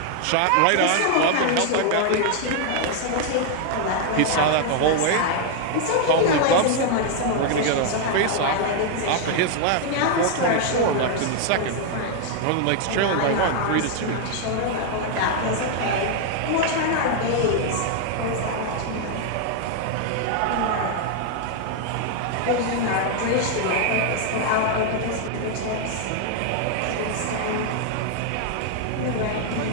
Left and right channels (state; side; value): different; both; correlation 0.00